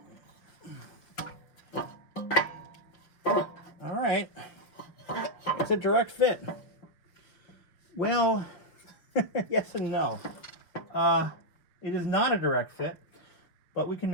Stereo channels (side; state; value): right; late; 6.2 ms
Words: All right, it's a direct fit. Well, yes and no. It is not a direct fit, but we can